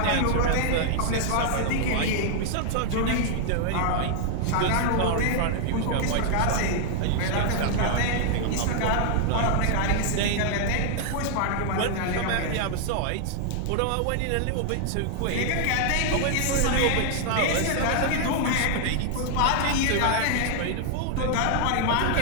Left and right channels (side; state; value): both; different; correlation 0.00